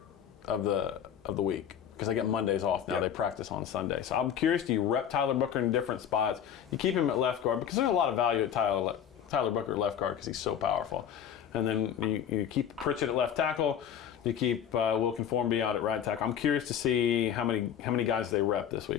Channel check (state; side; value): quieter; right; 9.1 dB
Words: of the week because they get Mondays off now. Yep. They practice on Sunday. So I'm curious, do you rep Tyler Booker in different spots? You keep him at left guard because there's a lot of value at Tyler Booker at left guard because he's so powerful. And then you keep Pritchett at left tackle. You keep Wilkin Formby out at right tackle. I'm curious to see how many guys they rep this